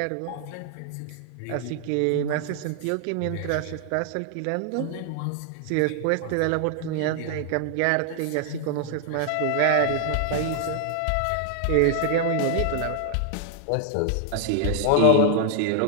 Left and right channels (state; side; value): different; both; correlation 0.00